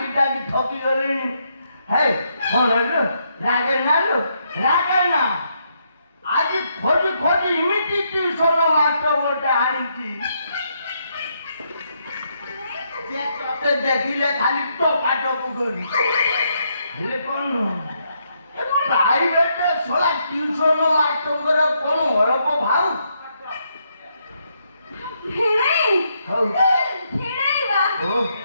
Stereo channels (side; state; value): both; inverted; correlation -0.76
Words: ଡାକି ଥକି ଗଲିଣି। ହେ କଣ ଲୋ ରାଗେନା ଲୋ ରାଗେନା। ଆଜି ଖୋଜି ଖୋଜି ଏମିତି ଟ୍ୟୁସନ ମାଷ୍ଟର ଗୋଟେ ଆଣିଛି ଯେ ତତେ ଦେଖିଲେ ଖାଲି ଟୋକାଟକୁ କରି। ହେଲେ କଣ ପ୍ରାଇଭେଟ ଶଳା ଟ୍ୟୁସନ ମାଷ୍ଟରଙ୍କର କଣ ଅଳପ ଭାଉ। ହଉ